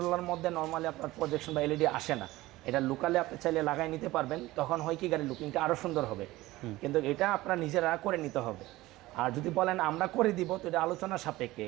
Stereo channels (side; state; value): left; quieter; 18.1 dB